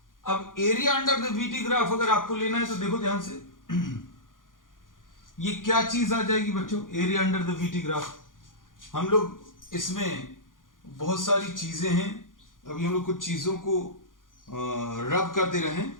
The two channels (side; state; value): right; late; 0.89 ms